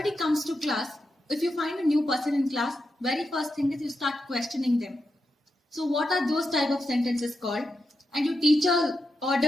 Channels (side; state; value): both; normal; correlation 0.87